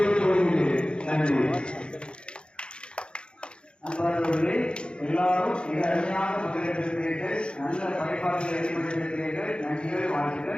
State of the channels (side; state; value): right; late; 0.054 ms